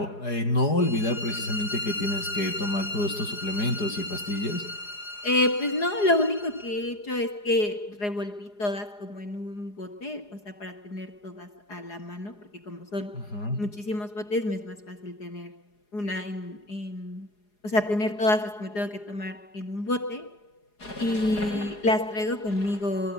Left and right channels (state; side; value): late; right; 4.8 ms